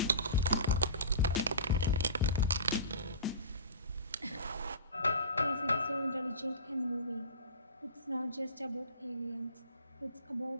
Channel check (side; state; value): both; inverted; correlation -0.33